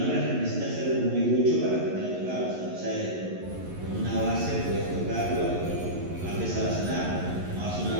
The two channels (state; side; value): late; left; 11 ms